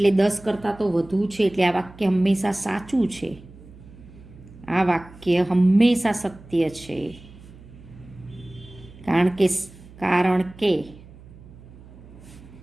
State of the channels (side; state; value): right; noise; hum, 20 dB below the sound